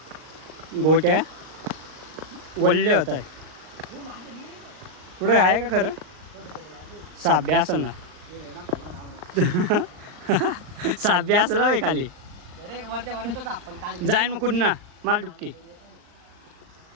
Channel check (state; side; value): late; left; 39 ms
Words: गोट्या वल्ले होत आहे कुठे आहे का खरं साब्या असेल ना साब्या असेल भाई खाली जाईन मग कुठं ना माल डुबकी